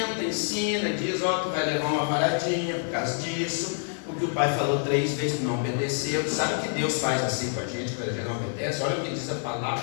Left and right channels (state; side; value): silent; right; digital silence